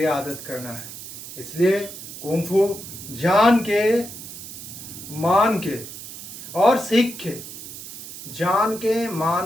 आदत करना है। इसलिए कुंग फू जान के, मान के और सीख के, जान के,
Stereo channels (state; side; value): noise; right; hiss, 12 dB below the sound